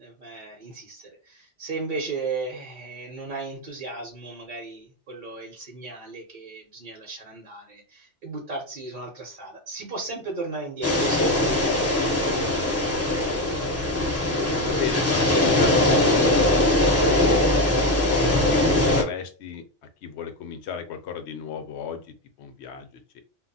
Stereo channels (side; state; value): both; normal; correlation 0.11